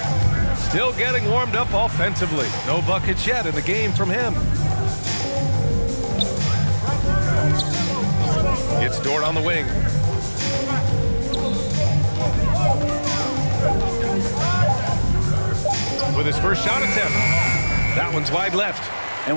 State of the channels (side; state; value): both; inverted; correlation -1.00